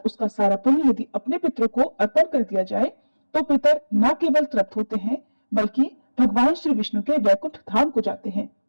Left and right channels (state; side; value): inverted; both; correlation -1.00